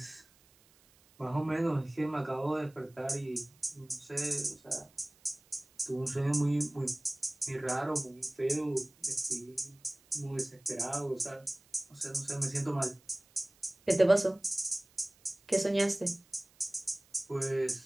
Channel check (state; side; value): noise; right; hiss, 30 dB below the sound